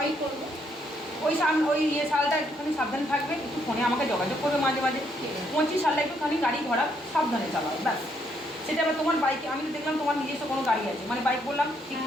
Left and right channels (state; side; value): normal; both; correlation 0.72